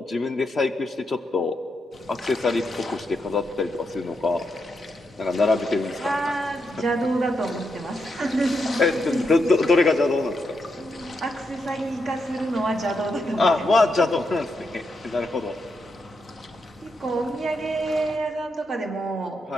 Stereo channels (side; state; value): both; normal; correlation 0.83